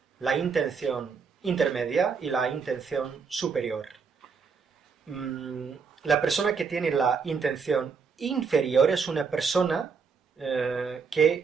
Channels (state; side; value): quieter; left; 5.6 dB